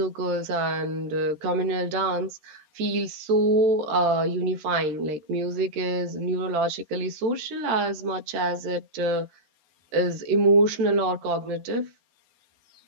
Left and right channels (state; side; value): late; left; 13 ms